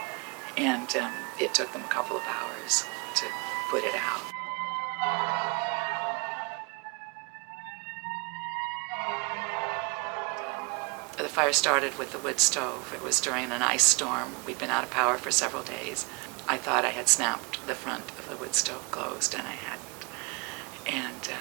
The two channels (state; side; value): quieter; left; 31.7 dB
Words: And it took them a couple of hours to put it out. The fire started with the wood stove. It was during an ice storm. We'd been out of power for several days. I thought I had snapped the front of the wood stove closed, and I hadn't. And